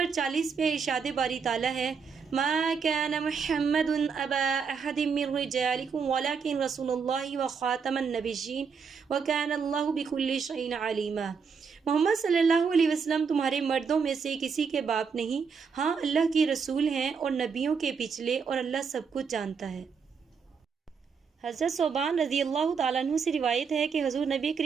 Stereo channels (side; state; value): left; quieter; 5.9 dB